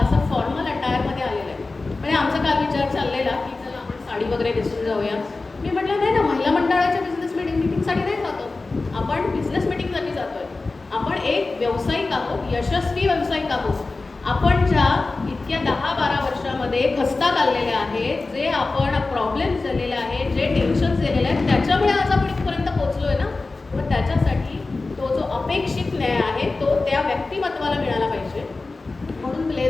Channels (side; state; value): right; quieter; 3.5 dB